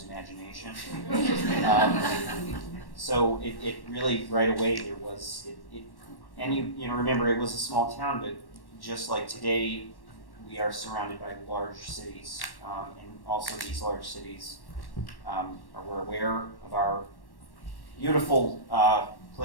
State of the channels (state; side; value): late; right; 1.1 ms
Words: imagination. So it really, right away, there was, and you remember, it was a small town, but just like today, we are surrounded by large cities, and also these large cities we're aware of our beautiful